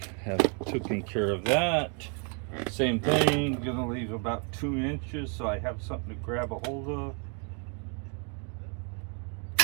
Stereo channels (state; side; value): quieter; left; 37.7 dB